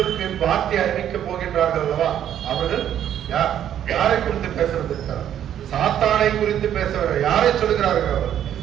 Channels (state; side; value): quieter; left; 10.3 dB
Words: வார்த்தை அறிவிக்க போகின்றார்கள் அல்லவா, அவர்கள் யாரை குறித்து பேசுவதற்காக சாத்தானை குறித்து பேசுவார்கள். யாரை சொல்கிறார்கள்? அவர்